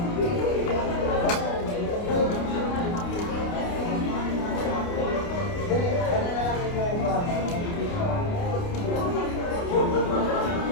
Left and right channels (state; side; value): late; right; 29 ms